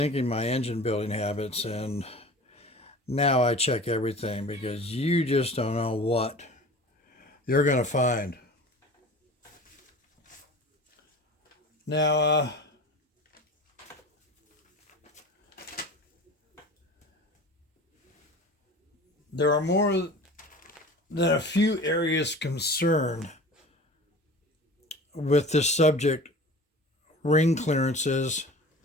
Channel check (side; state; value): both; normal; correlation 0.38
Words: my engine building habits, and now I check everything because you just don't know what you're going to find. Now, there are more than a few areas concerned with this subject: ring clearances,